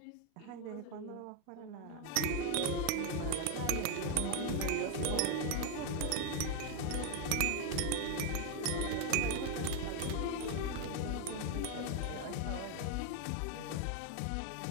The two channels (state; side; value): different; both; correlation 0.01